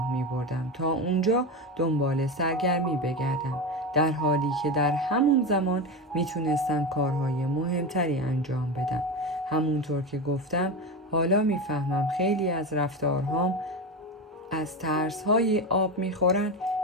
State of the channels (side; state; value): both; normal; correlation 0.18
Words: می بردم تا اونجا دنبال سرگرمی بگردم، در حالی که در همون زمان می تونستم کارهای مهمتری انجام بدم. همونطور که گفتم حالا می فهمم خیلی از رفتارهام از ترس‌های آب می خورن